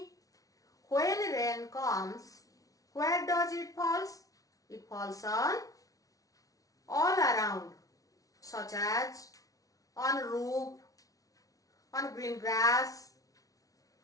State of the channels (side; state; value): right; late; 0.17 ms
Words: when rain comes, where does it fall? It falls on all around, such as on roof, on green grass,